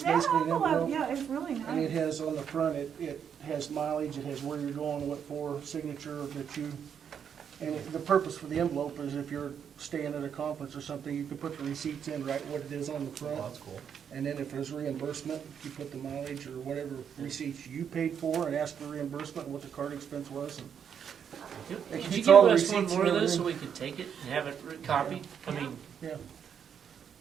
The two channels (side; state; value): left; quieter; 7.9 dB